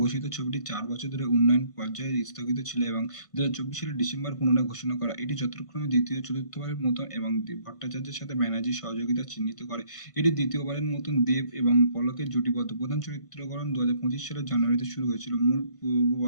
ঘোষিত ছবিটি 4 বছর ধরে উন্নয়ন পর্যায়ে স্থগিত ছিল এবং 2024 সালের ডিসেম্বর পুনরায় ঘোষণা করা। এটি যথাক্রমে দ্বিতীয় চতুর্থবারের মতন এবং ভট্টাচার্যের সাথে ব্যানার্জির সহযোগিতা চিহ্নিত করে। এটি দ্বিতীয়বারের মতন দেব এবং পলকের জুটিবদ্ধ। প্রধান চরিত্রকরণ 2025 সালের জানুয়ারিতে শুরু হয়েছিল মূল পূর্ব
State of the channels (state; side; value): late; right; 1.5 ms